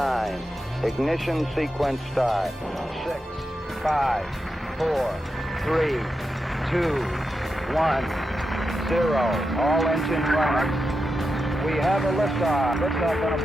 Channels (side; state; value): both; normal; correlation 0.88